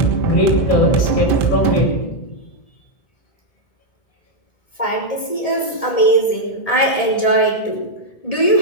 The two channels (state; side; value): late; right; 1.8 ms